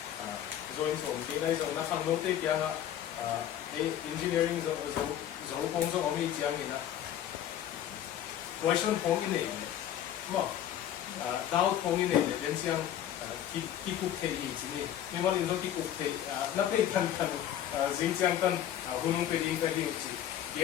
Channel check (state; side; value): quieter; right; 10.9 dB